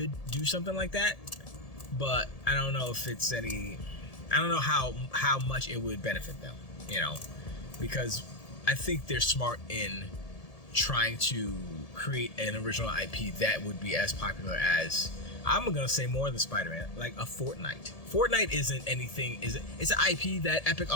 do something like that, but I don't know if it's any... I don't know how much it would benefit them, you know, because I think they're smart in trying to create an original IP that would be as popular as, I'm gonna say, more than Spider-Man, like a Fortnite. Fortnite isn't anything, it's an IP that Epic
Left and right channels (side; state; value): right; late; 1.7 ms